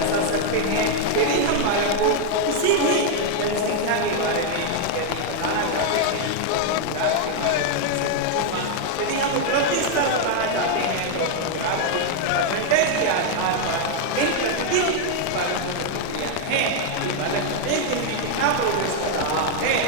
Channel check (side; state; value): both; different; correlation 0.00